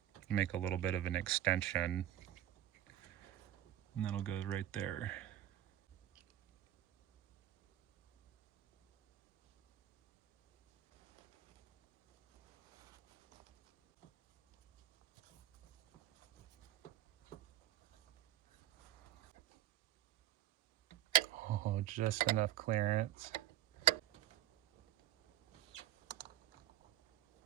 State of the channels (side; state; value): left; quieter; 13.2 dB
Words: make a little bit of an extension. And that'll go right there. Oh, just enough clearance.